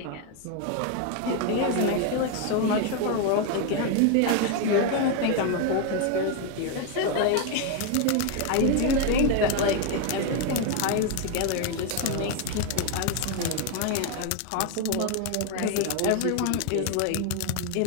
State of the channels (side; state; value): both; different; correlation 0.01